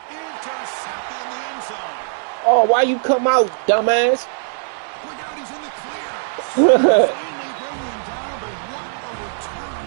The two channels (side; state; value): left; silent; 65 dB below the other